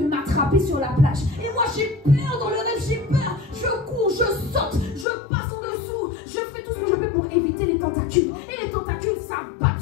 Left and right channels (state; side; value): drops out; right; at 5.1 s